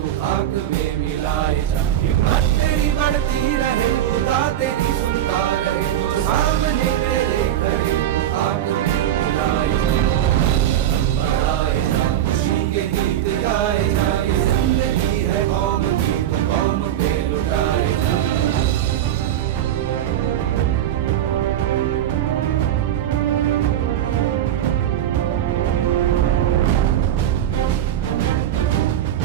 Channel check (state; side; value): quieter; left; 11.5 dB